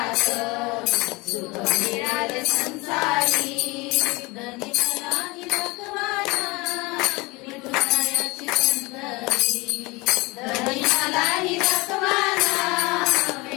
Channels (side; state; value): right; quieter; 24.2 dB